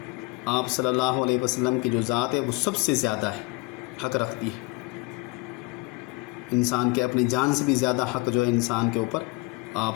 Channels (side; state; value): right; quieter; 24.8 dB